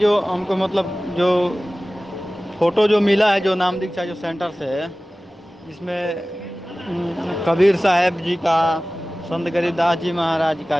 हमको मतलब जो फ़ोटो जो मिला है जो नाम दीक्षा जो सेंटर से है जिसमें कबीर साहब जी का, संत गरीबदास जी महाराज का,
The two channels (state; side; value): normal; both; correlation 0.97